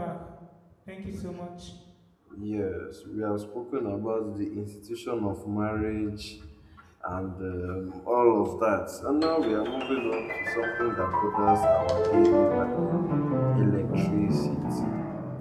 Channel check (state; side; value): identical; both; correlation 1.00